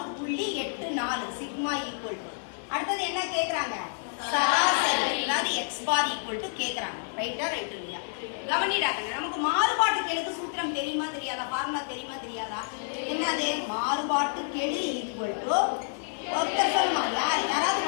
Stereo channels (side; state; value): right; silent; digital silence